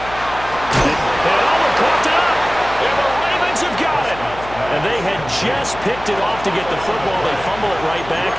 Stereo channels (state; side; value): noise; left; hum, 15 dB below the sound